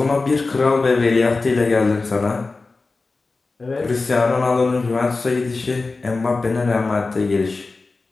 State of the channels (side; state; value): right; quieter; 3.7 dB